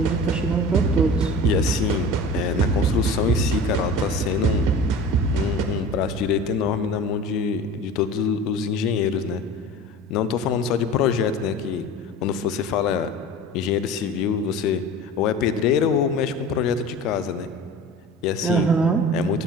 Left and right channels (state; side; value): normal; both; correlation 0.36